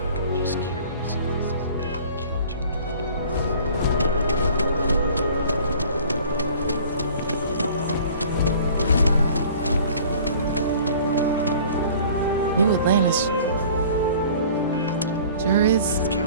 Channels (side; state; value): both; inverted; correlation -0.48